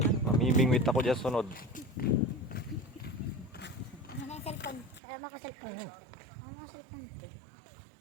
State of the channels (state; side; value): drops out; left; at 5.0 s